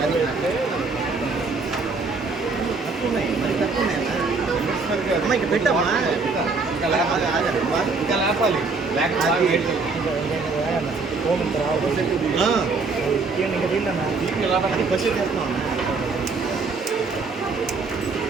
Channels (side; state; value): left; quieter; 4.2 dB